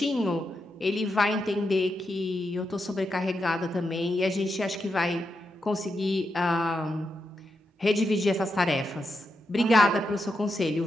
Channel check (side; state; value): both; normal; correlation 0.85